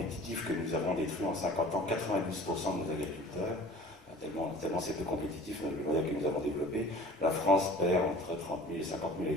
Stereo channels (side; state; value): both; normal; correlation 0.45